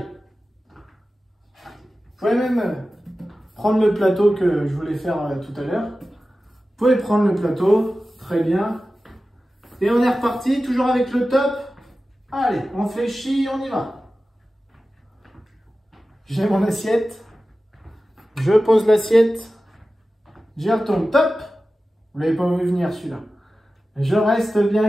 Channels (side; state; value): both; normal; correlation 0.95